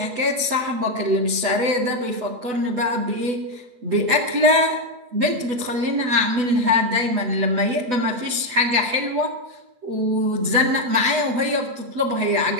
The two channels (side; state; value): left; late; 8.1 ms